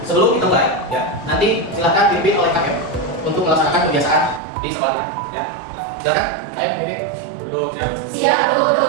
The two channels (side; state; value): left; drops out; at 4.4 s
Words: Sebelum kita mulai, ya, nanti silakan dipimpin oleh KM untuk melaksanakan kebiasaan di sekolahnya. Ya, silakan. Ayo pimpin. Duduk ya. Siap